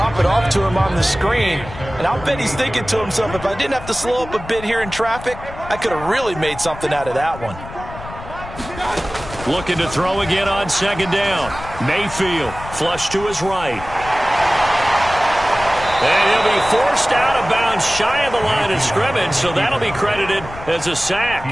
it off to him on the screen. And I'll bet he's thinking to himself, if I didn't have to slow up a bit here in traffic, I could have really made something out of that one. Looking to throw again on second down. Mayfield flush to his right. And he'll be forced out of bounds shy of the line of scrimmage, so that'll be credited as a sack.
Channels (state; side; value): noise; left; rumble, 13 dB below the sound